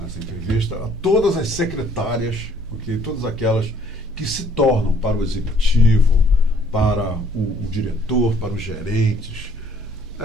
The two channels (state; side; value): normal; both; correlation 0.61